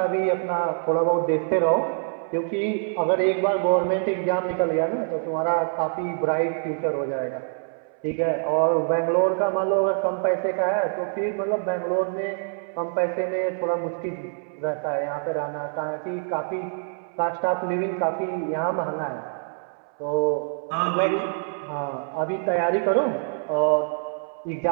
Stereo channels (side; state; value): left; silent; 62 dB below the other